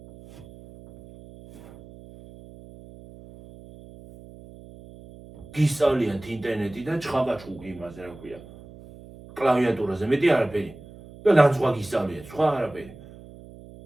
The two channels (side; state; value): right; noise; hum, 19 dB below the sound